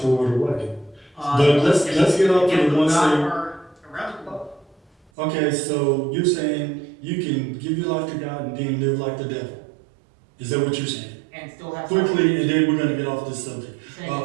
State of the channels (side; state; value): left; drops out; at 5.1 s